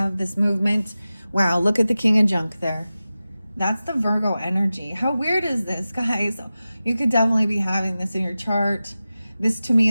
this movement. Wow, look at the King of Junk there. That's the Virgo energy. How weird is this, guys? You could definitely be having this in your chart. This to me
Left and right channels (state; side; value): inverted; both; correlation -0.95